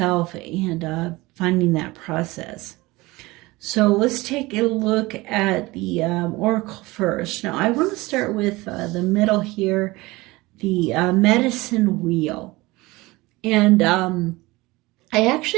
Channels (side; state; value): left; quieter; 21.2 dB